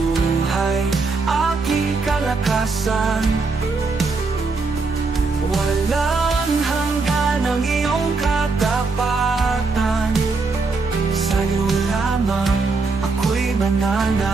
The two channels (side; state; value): left; quieter; 4.1 dB